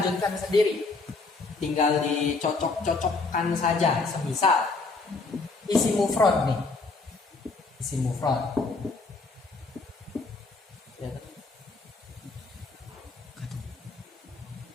sendiri. Tinggal dicocok-cocokkan saja. Semisal isi mufrad nih. Isi mufrad.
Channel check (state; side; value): quieter; right; 3.8 dB